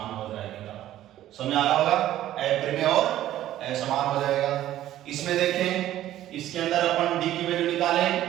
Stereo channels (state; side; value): quieter; left; 13.2 dB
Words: हो जाएगा। समझ आ रहा होगा, अपरिमेय और असमान हो जाएगा। इसमें देखें, इसके अंदर अपन d की वैल्यू निकालें,